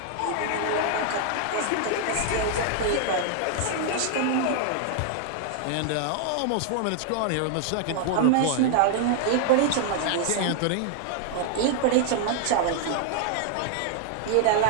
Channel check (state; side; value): different; both; correlation 0.00